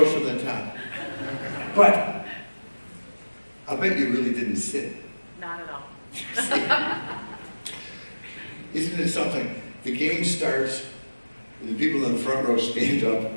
from the top. But I'll bet you really didn't sit. Not at all. Isn't it something? The game starts, and the people in the front row stand up,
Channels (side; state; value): both; inverted; correlation -1.00